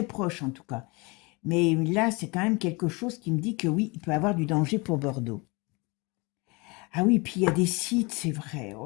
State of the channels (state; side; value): quieter; right; 27.4 dB